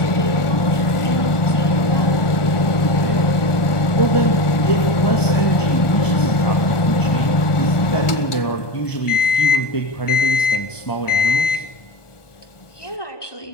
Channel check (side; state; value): right; late; 1.4 ms